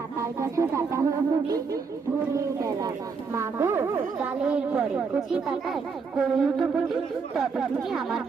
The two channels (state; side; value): quieter; left; 5.2 dB